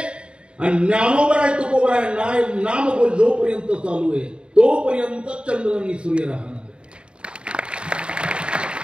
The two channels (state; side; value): late; left; 0.053 ms